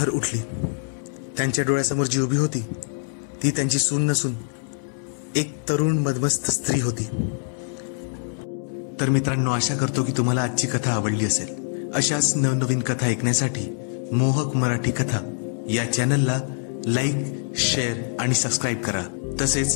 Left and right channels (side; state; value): right; silent; 62 dB below the other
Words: उठली. त्यांच्या डोळ्यासमोर जी उभी होती ती त्यांची सून नसून एक तरुण मदमस्त स्त्री होती. तर मित्रांनो, आशा करतो की तुम्हाला आजची कथा आवडली असेल. अशाच नवनवीन कथा ऐकण्यासाठी मोहक मराठी कथा या चॅनलला लाईक, शेअर आणि सबस्क्राईब करा.